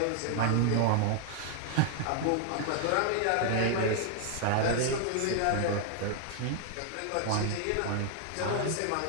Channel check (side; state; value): both; different; correlation 0.00